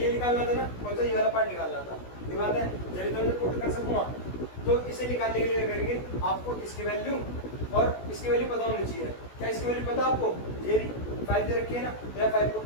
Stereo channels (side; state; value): right; late; 16 ms